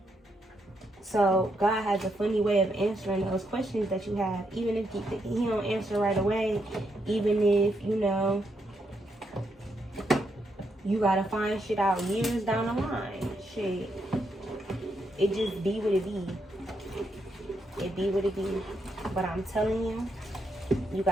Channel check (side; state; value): both; normal; correlation 0.79